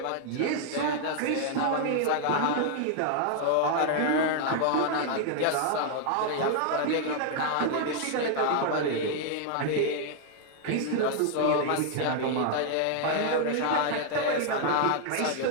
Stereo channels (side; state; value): both; different; correlation 0.00